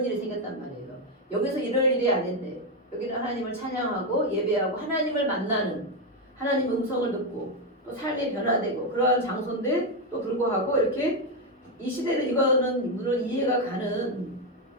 일이 생겼단 말이에요. 여기서 이럴 일이 아닌데 여기는 하나님을 찬양하고 예배하고 하나님을 만나는 하나님 음성을 듣고 또 삶이 변화되고 그러한 장소인데 또 불구하고 이렇게 이 시대는 이거는 물론 이해가 가는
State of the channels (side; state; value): both; normal; correlation 0.06